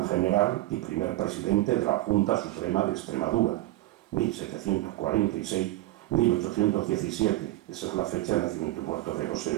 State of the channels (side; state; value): left; quieter; 17.0 dB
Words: general y primer presidente de la Junta Suprema de Extremadura, 1746-1817, esa es la fecha de nacimiento y muerto de